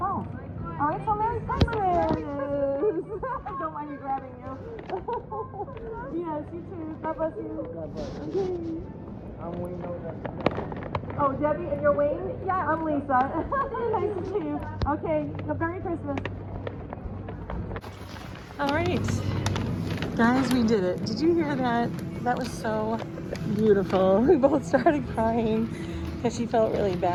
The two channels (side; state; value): both; identical; correlation 1.00